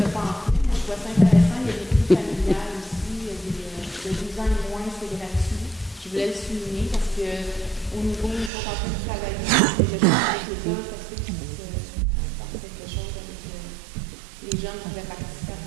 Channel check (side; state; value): left; drops out; at 8.5 s